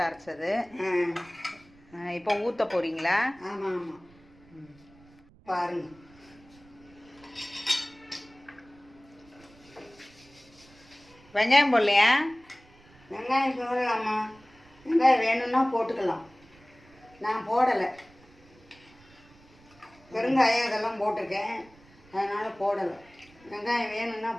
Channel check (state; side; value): noise; right; rumble, 27 dB below the sound